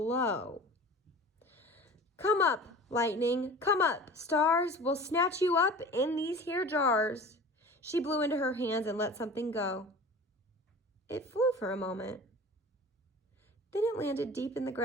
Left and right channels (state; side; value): normal; both; correlation 0.39